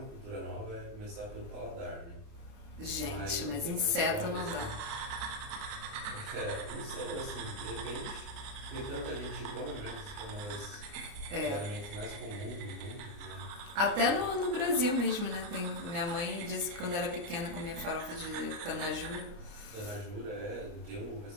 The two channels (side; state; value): left; late; 29 ms